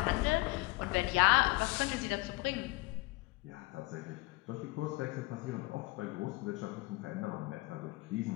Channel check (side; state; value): right; quieter; 23.6 dB